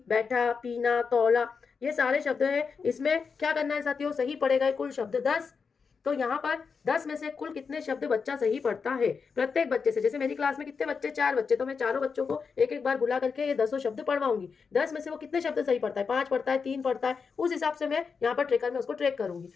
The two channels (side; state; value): right; quieter; 5.5 dB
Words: बैठा, पीना, तौला, ये सारे शब्द हैं। इसमें क्या करना है साथियों, सही पढ़े गए कुल शब्द 10। तो यहाँ पर 10 में से कुल कितने शब्द बच्चा सही पढ़ता है, प्रत्येक बच्चे से, जैसे मेरी क्लास में कितने बच्चे, 4 बच्चे, तो मैं चारों बच्चों को एक एक बार बुला करके ये 10 शब्द पढ़वाऊंगी। 10 में से वो कितने शब्द सही पढ़ता है, 5 पढ़ता है, 3 पढ़ता है, उस हिसाब से मैं यहाँ पर ट्रेकर में उसको ट्रैक करूंगी।